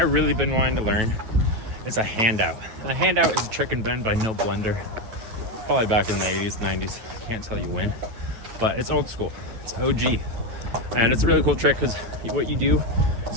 really been wanting to learn is a handout. A handout is a trick and bend by no blender. Probably back in the 80s, 90s. I can't tell you when, but it's old school. It's OG. And it's a really cool trick because what you do is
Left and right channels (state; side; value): late; left; 9.2 ms